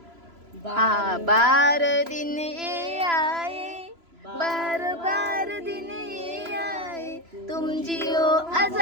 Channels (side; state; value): left; late; 3.0 ms